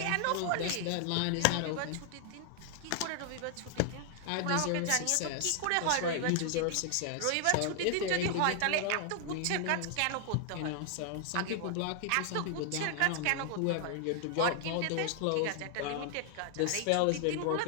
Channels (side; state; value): both; different; correlation 0.00